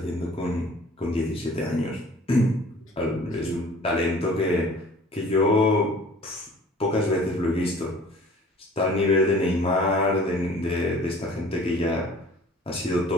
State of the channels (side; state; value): both; normal; correlation 0.48